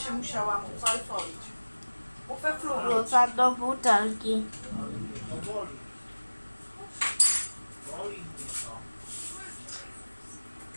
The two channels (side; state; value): both; inverted; correlation -1.00